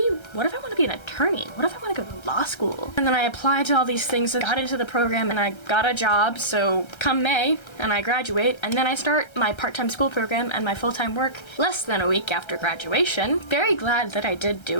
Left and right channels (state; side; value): late; right; 1.3 ms